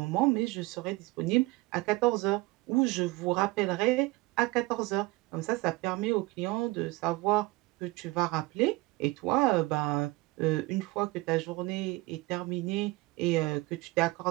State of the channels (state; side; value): quieter; left; 21.9 dB